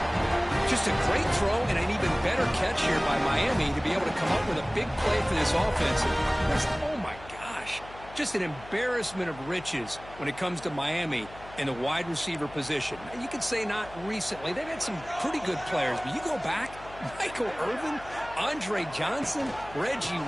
Just a great throw and an even better catch here by Miami to be able to come up with a big play for this offense. Oh, my gosh. Just an embarrassment of riches when it comes to Miami in the wide receiver position. And you could say not recently. They've had some pretty good players, but you go back, Michael Irvin, Andre Johnson, Reggie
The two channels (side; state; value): left; noise; hum, 18 dB below the sound